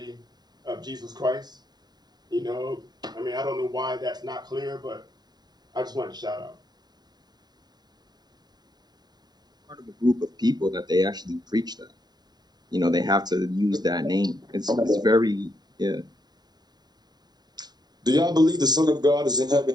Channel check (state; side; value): late; left; 0.20 ms